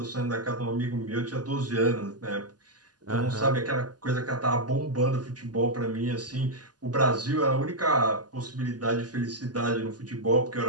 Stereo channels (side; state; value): left; late; 0.69 ms